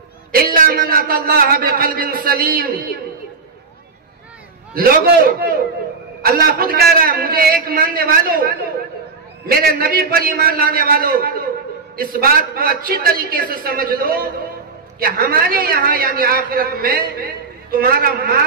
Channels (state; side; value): quieter; left; 4.6 dB